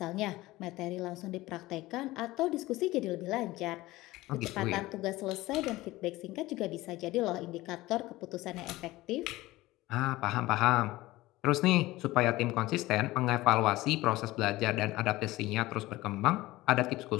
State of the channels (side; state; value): right; quieter; 18.4 dB